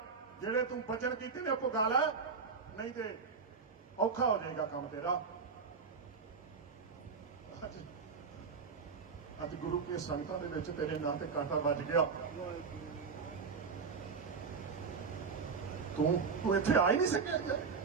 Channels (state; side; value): quieter; left; 5.3 dB